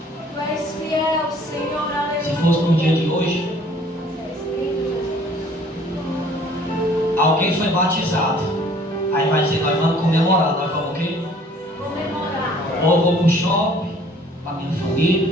Tu és fiel, Senhor, aleluia. se fosse no dia de hoje, alguém foi batizado, aí vai dizer: nós vamos comemorar. Nós vamos o quê? Comemorar. Ou eu vou para o shopping com a minha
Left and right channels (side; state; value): both; normal; correlation 0.55